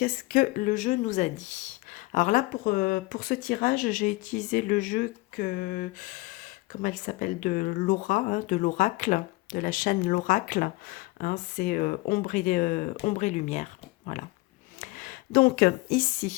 que le jeu nous a dit? Alors là, pour ce tirage, j'ai utilisé le jeu comment elle s'appelle, de Laura, hein, de l'Oracle, de la chaîne L'Oracle. Hein, c'est Ombre et Lumière. Voilà. Donc,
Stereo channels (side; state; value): right; quieter; 22.0 dB